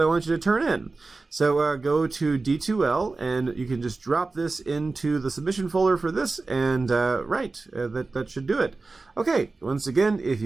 I want you to turn in. So go to D2L, and you can just drop this into the submission folder for this, and that should do it. Okay, once again, if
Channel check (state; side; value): quieter; left; 3.7 dB